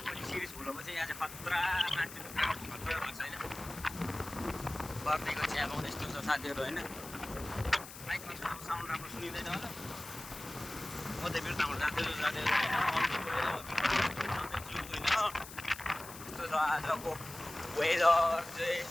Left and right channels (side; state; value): left; noise; hiss, 14 dB below the sound